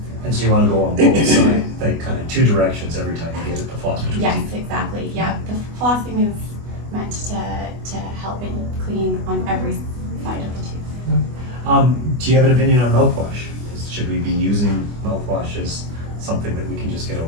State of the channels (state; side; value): late; left; 24 ms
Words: And so you want to go on both sides, like kind of two directions every time you get it, the floss between Yes, teeth. exactly. Yeah, the flossing is meant to help it clean on every side of the tooth. Do you have an opinion on mouthwash? Should we be using mouthwash as something that we can just get